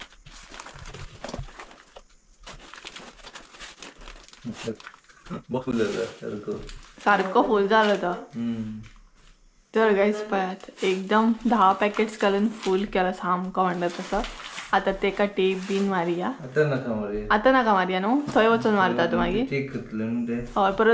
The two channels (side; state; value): both; identical; correlation 1.00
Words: सारको फूल जालो तो. तर गायज पळयात एकदम 10 पॅकेट्स घालून फूल केला सामको म्हणटा तसो. आतां तेका टेप बीन मारया. आतां नाका मारया न्हू थंय वचून मारता तूं मागीर. हय